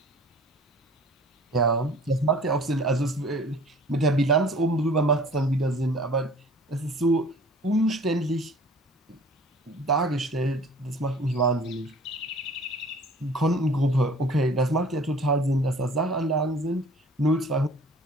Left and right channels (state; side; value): normal; both; correlation 0.48